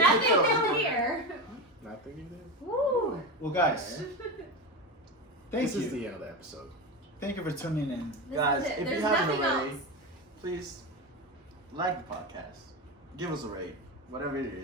new here. Nothing you did. Woo. Well, guys, thank This you. is the end of the episode. Thank you for tuning in. This Guys, is it. if There's you haven't nothing already, else. please like the podcast. Give us a rate, whatever it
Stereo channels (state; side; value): normal; both; correlation 0.19